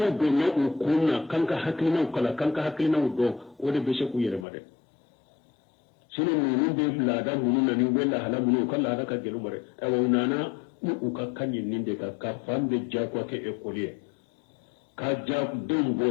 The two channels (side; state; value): right; drops out; at 4.5 s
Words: do na ukunna kanka haklina kala kanka haklina do wode be se ku yere made sino nunu be lada mununa ni wella hala munu kala da ka gelu mare e wonana u ka kanyin ninde ka fambe jakwa ke ekolier ka jak dum